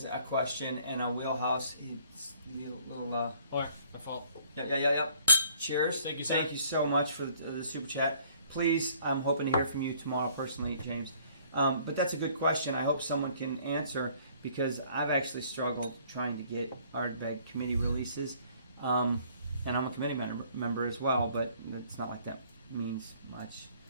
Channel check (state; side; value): inverted; both; correlation -0.59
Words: a question and a wheelhouse. He's a little. All right, my fault. Yeah. Cheers. Thank you, sir. Thank you so much for the super chat. Please, I'm hoping to hear from you tomorrow personally, James. But that's a good question. I hope someone can answer, because I've actually struggled trying to get Ardbeg committee releases. And I'm a committee member as well, but it's not like that means much.